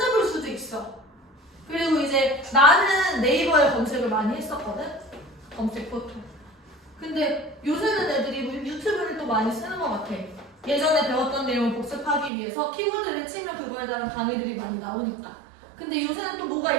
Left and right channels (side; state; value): left; drops out; at 12.3 s